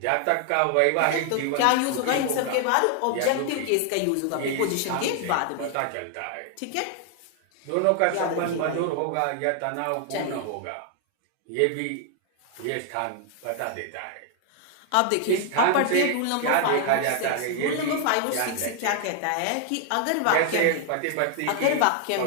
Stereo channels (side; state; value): both; different; correlation 0.00